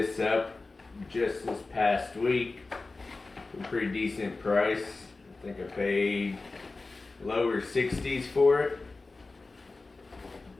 up just this past week for a pretty decent price. I think I paid lower 60s for it.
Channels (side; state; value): right; quieter; 3.6 dB